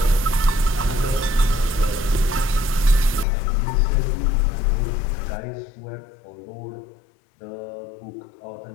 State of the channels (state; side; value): drops out; right; at 3.2 s